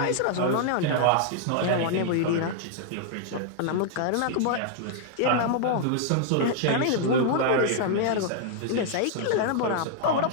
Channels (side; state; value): both; different; correlation -0.01